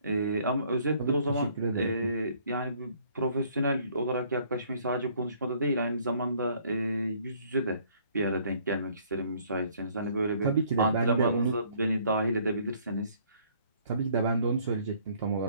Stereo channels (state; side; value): inverted; both; correlation -0.61